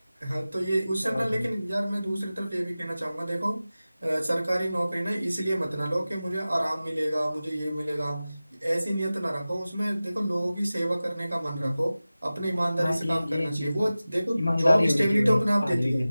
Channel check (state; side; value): inverted; both; correlation -0.96